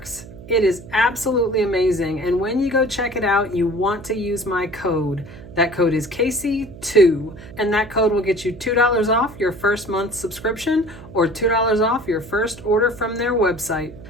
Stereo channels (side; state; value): right; noise; hum, 16 dB below the sound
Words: It is absolutely amazing, and when you go check it out, you want to use my code. That code is Casey2, and that code will get you $2 off your first month subscription or $2 off your first order from their website.